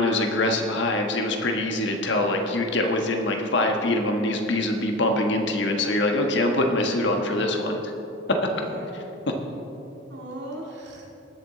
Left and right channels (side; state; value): both; normal; correlation 0.28